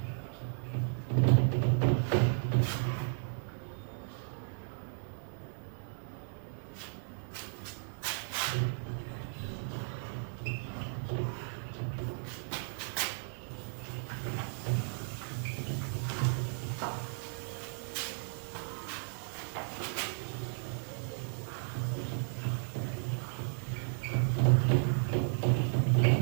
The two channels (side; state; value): left; silent; 55 dB below the other